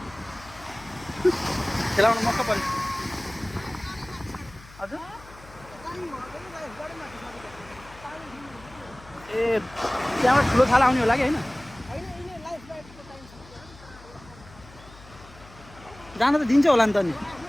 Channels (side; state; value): left; noise; hum, 21 dB below the sound